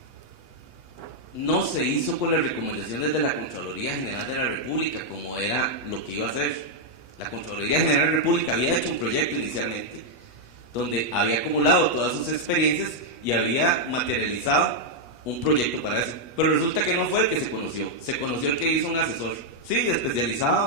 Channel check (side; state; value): right; late; 8.3 ms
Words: no se hizo con las recomendaciones de la Contraloría General de la República, como era lo que iba a hacer. La Contraloría General de la República había hecho un proyecto inicialmente, donde había acumulado todas sus experiencias y había materializado un proyecto para eso. Pero resulta que no fue el que se conoció el que hizo un asesor, sí,